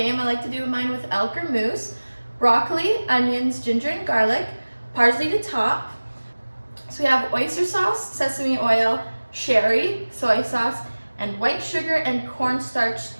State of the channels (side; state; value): both; inverted; correlation -1.00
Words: I like to do mine with elk or moose. Broccoli, onions, ginger and garlic, parsley to top. So we have oyster sauce, sesame oil, sherry, soy sauce, and white sugar and